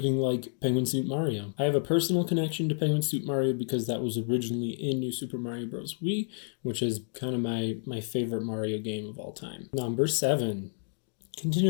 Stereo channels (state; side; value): silent; right; 58 dB below the other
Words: like Penguin Suit Mario. I have a personal connection to Penguin Suit Mario because that was originally in New Super Mario Bros. Wii, which is kind of my favorite Mario game of all time. Number 7.